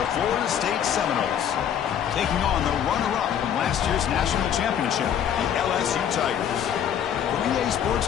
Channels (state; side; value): quieter; right; 9.2 dB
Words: the Florida State Seminoles, taking on the runner-up from last year's national championship, the LSU Tigers. For EA Sports